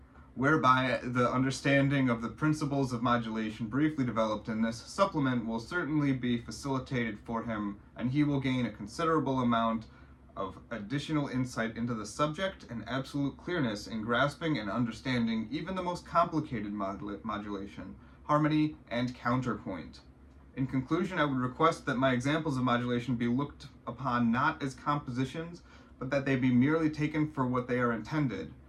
whereby the understanding of the principles of modulation briefly developed in this supplement will certainly be facilitated for him, and he will gain a considerable amount of additional insight into the subject and absolute clearness in grasping and understanding even the most complicated modulation, harmony, and counterpoint. In conclusion, I would request that my examples of modulation be looked upon not as compositions, but that they be merely taken for what they are intended,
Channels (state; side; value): identical; both; correlation 1.00